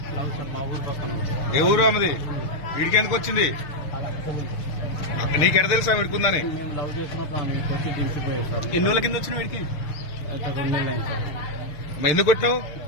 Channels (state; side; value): late; right; 6.5 ms